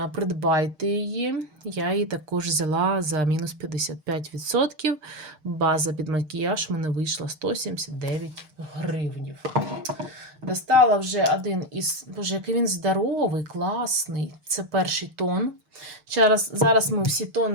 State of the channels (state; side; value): late; left; 6.5 ms